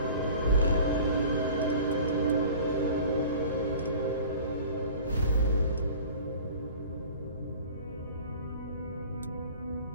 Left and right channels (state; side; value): inverted; both; correlation -0.43